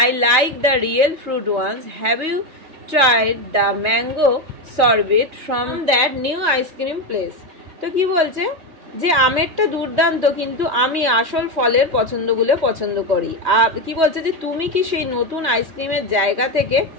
like the real fruit ones, have you tried the mango sorbet from that new ice cream place. তো কি বলছে যে আমেরটা দুর্দান্ত, কিন্তু আমি আসল ফলের পছন্দগুলো পছন্দ করি। আর কি বলছে যে তুমি কি সেই নতুন আইসক্রিমের জায়গা থেকে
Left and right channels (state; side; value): late; left; 3.2 ms